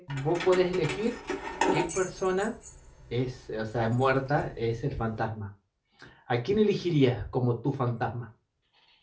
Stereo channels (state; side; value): identical; both; correlation 1.00